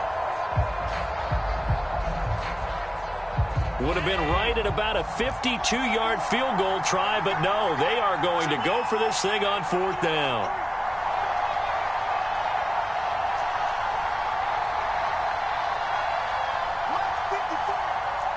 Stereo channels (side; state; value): both; identical; correlation 1.00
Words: Would have been right at about a 52-yard field goal try, but no, they are going to go for this thing on 4th down.